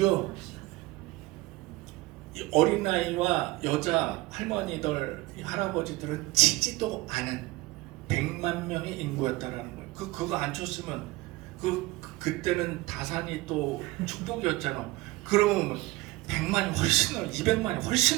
이 어린아이와 여자 할머니들 할아버지들은 치지도 않은 100만 명의 인구였다라는 거예요. 그거 안 쳤으면 그때는 다산이 또 축복이었잖아. 그러면 100만이 훨씬 넘는 200만이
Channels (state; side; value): quieter; left; 20.4 dB